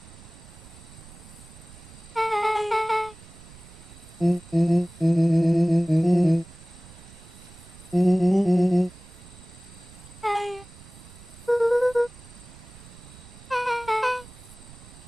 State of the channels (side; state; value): right; noise; rumble, 20 dB below the sound